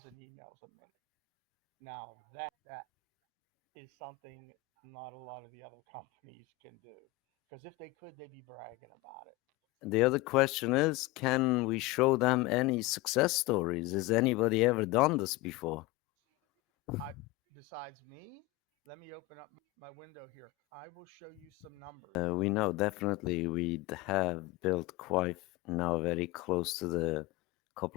emails a minute. Now, that is something not a lot of the other companies can do. Because if they could, they'd be bragging about it. The other question is, can we show them any success stories? Has anybody ever done this before? I, besides me, let me open up my window here. I will show you some numbers. We know definitely we have built quite now very close to the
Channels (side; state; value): right; quieter; 18.0 dB